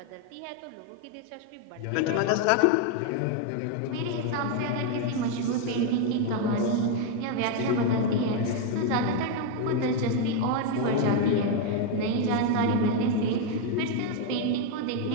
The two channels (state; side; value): different; both; correlation 0.01